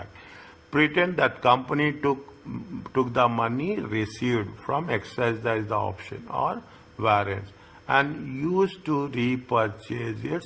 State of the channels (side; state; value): both; identical; correlation 1.00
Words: pretend that company took the money received from exercise the option or warrants and used to repurchase